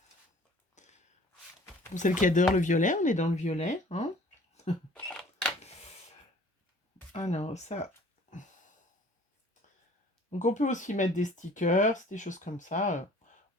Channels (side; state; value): both; normal; correlation 0.51